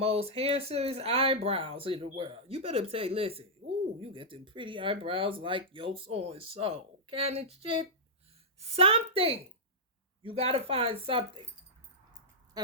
handsomest eyebrows in the world. You better say, listen, ooh, you get them pretty eyebrows like yo so-and-so. Kind of shit. Something. You gotta find something.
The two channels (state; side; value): normal; both; correlation -0.09